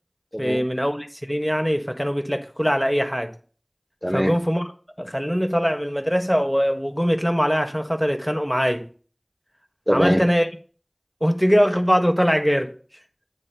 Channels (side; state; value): both; identical; correlation 1.00